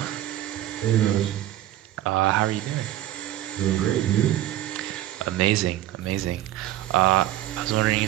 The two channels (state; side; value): quieter; left; 13.5 dB